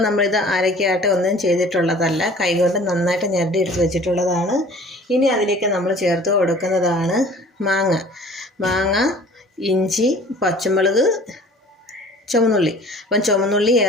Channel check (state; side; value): normal; both; correlation 0.48